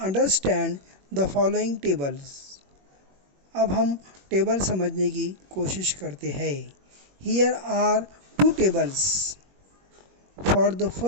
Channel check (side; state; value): left; late; 21 ms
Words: understand the following tables. अब हम टेबल समझने की कोशिश करते हैं। Here are two tables. For the